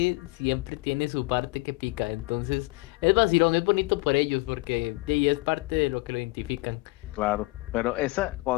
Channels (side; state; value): right; quieter; 23.4 dB